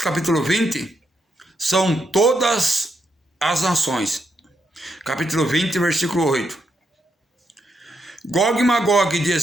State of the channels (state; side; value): normal; both; correlation 0.80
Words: capítulo 20, são todas as nações. Capítulo 20, versículo 8. Gog e Magog de